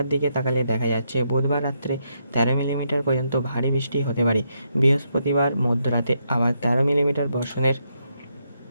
দিকে তাকালে দেখা যাচ্ছে বুধবার রাত্রে 13 মিলিমিটার পর্যন্ত ভারী বৃষ্টি হতে পারে। বৃহস্পতিবার মধ্যরাতে আবার 13 মিলিমিটার বর্ষণের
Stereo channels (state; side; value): inverted; both; correlation -0.79